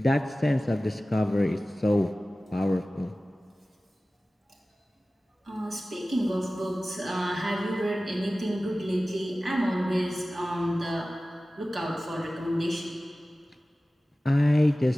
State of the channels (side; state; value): both; normal; correlation 0.96